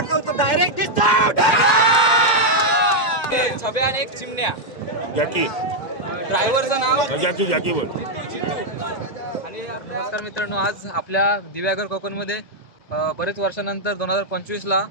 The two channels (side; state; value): right; late; 1.9 ms